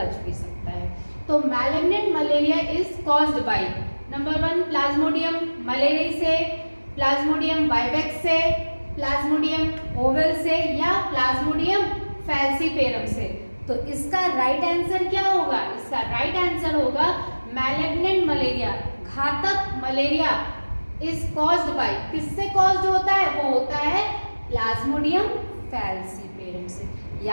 भी सकता है। तो malignant malaria is caused by number 1 Plasmodium malaria से, प्लाज्मोडियम वाइवेक्स से, प्लाज्मोडियम ओवल से या प्लाज्मोडियम फैल्सीपेरम से। तो इसका राइट आंसर क्या होगा? इसका राइट आंसर होगा मैलिग्नेंट मलेरिया, घातक मलेरिया इज कॉज्ड बाय, किससे कॉज्ड होता है? वो होता है प्लाज्मोडियम फैल्सीपेरम से।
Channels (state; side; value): inverted; both; correlation -1.00